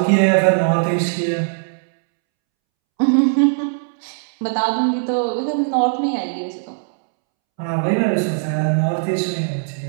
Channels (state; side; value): silent; left; 66 dB below the other